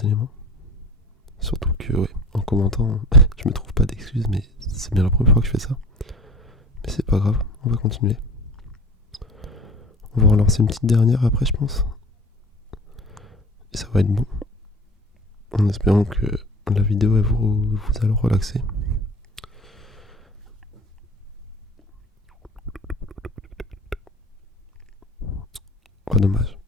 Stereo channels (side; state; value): both; normal; correlation 0.41